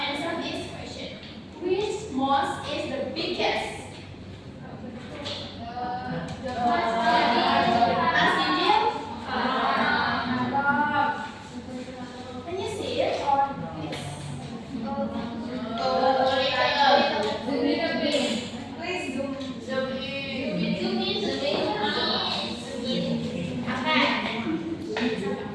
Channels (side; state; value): both; identical; correlation 1.00